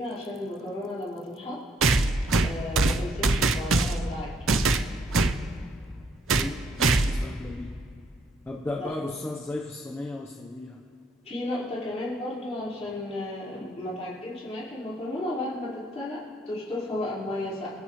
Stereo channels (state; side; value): normal; both; correlation 0.68